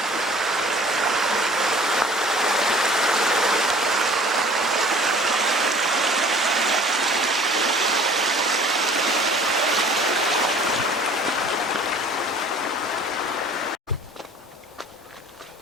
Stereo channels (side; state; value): both; normal; correlation 0.50